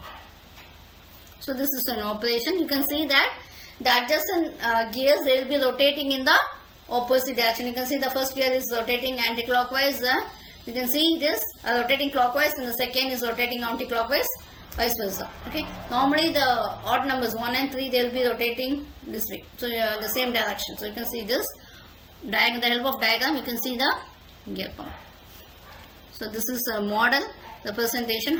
So this is an operation. You can see that the adjacent gears, they will be rotating in the opposite direction. You can see the first gear is rotating anti-clockwise. You can see this rotating clockwise, and the second is rotating anti-clockwise, vice versa. Okay, normally the odd numbers 1 and 3 they will be rotating this way, so the same direction. So you can see this diagram, the help of diagram you can see the gear pump. So this is a model representation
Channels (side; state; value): both; identical; correlation 1.00